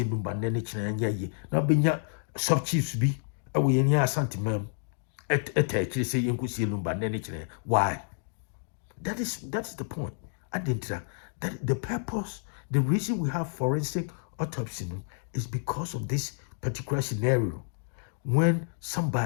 Lumba Nenich and ye. Now benya sub chiefs be away in your sentiment. Actually say you could see Lumba Nenich. Why? That's the point. I didn't that the purpose, the reason we have forensic autopsy is because of this particular scenario. When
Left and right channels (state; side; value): silent; right; digital silence